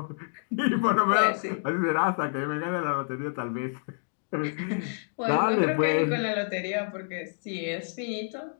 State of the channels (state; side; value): silent; right; digital silence